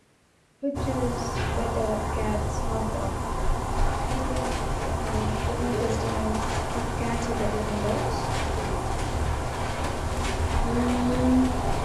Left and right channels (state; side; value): identical; both; correlation 1.00